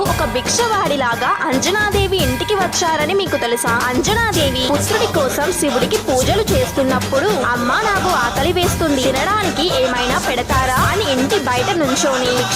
ఒక భిక్షవాడిలాగా అంజనాదేవి ఇంటికి వచ్చారని మీకు తెలుసా? అంజనాదేవి పుత్రుడి కోసం శివుడికి పూజలు చేస్తున్నప్పుడు అమ్మా నాకు ఆకలి వేస్తుంది, తినడానికి ఏమైనా పెడతారా అని ఇంటి బయట నుంచోని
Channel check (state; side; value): identical; both; correlation 1.00